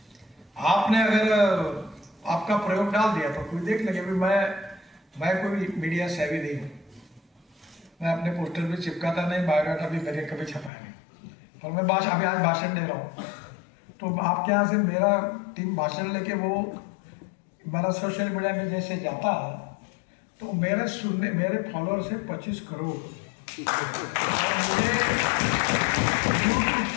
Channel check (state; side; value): drops out; right; at 10.7 s